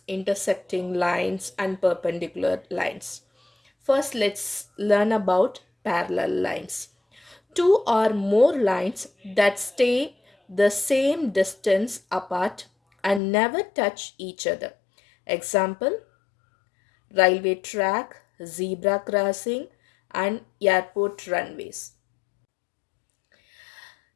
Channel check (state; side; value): drops out; right; at 13.2 s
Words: intersecting lines, and perpendicular lines. First, let's learn about parallel lines. Two or more lines that stay the same distance apart and never touch each other. Example, railway track, zebra crossing, and airport runways.